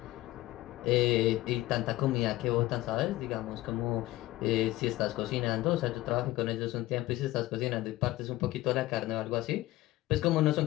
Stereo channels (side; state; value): right; quieter; 17.1 dB